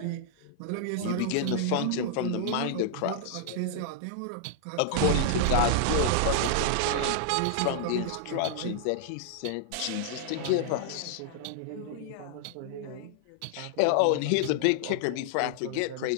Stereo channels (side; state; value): both; different; correlation -0.01